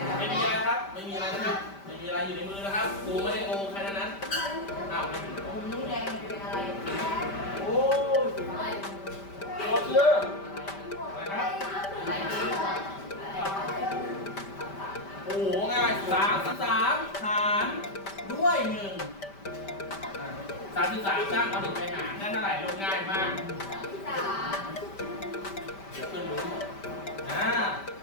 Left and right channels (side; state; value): right; late; 5.1 ms